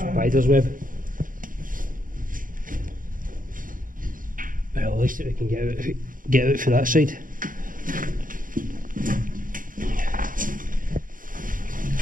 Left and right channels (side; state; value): left; late; 0.40 ms